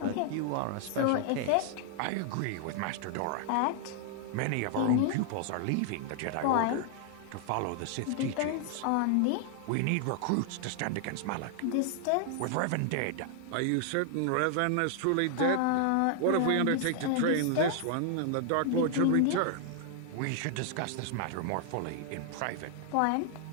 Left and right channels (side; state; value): both; different; correlation 0.00